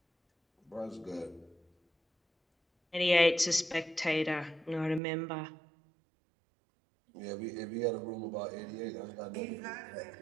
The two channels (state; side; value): drops out; left; at 5.0 s